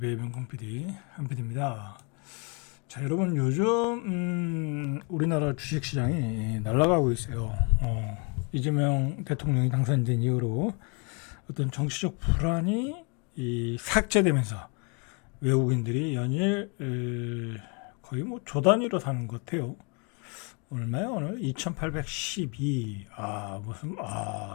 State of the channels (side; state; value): right; quieter; 34.2 dB